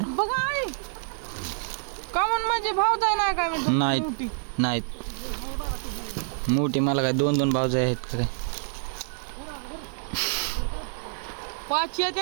बघा आई कमून म्हणजे भाऊ जाय नाही काय म्हणतो नाहीत नाहीत मोठी मला काय दोन दोन भावज आहेत खरे 5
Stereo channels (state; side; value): silent; left; digital silence